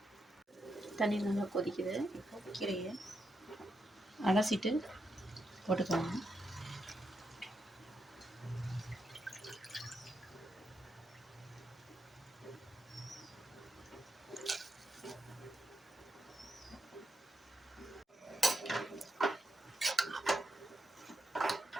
தண்ணி நல்லா கொதிக்குது. இப்போ கீரையை அலசிட்டு போட்டுக்கோங்க.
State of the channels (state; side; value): normal; both; correlation 0.84